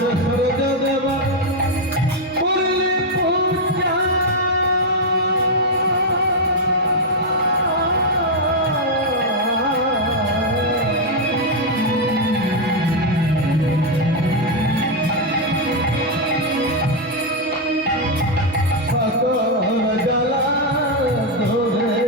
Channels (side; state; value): both; normal; correlation 0.01